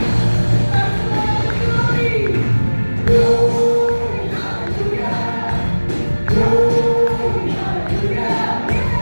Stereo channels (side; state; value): both; inverted; correlation -1.00